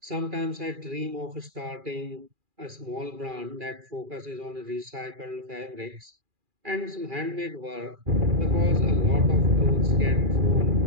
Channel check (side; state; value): left; late; 2.4 ms